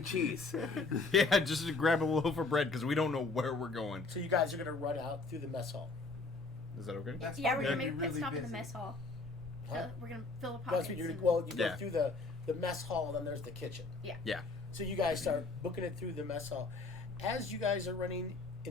cheese. Yeah, just to grab a loaf of bread because we don't know where we're going. So you guys are gonna run out through the mess hall. Is that okay? That's Yeah, we're probably gonna make a pit really stop in the busy. mess hall. Huh? We're gonna fill the That's pockets. what you and- go Yeah. through the mess hall, and then there's the kitchen. Yeah. So you guys start booking it through the mess hall. As you guys are running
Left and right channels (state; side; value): quieter; right; 3.7 dB